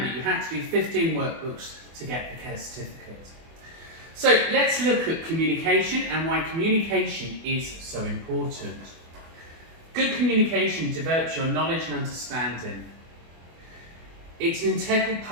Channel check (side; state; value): left; late; 24 ms